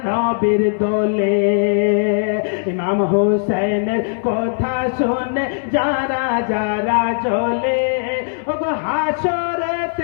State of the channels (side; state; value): right; silent; digital silence